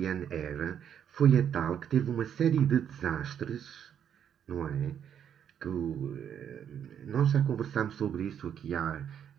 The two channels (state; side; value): quieter; left; 8.9 dB